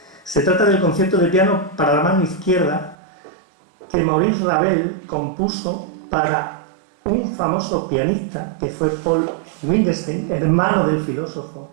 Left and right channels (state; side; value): drops out; left; at 3.0 s